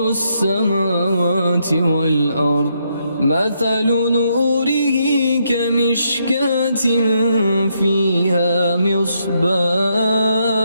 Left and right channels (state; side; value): inverted; both; correlation -0.77